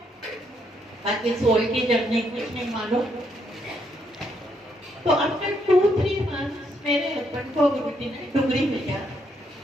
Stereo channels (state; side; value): normal; both; correlation 0.74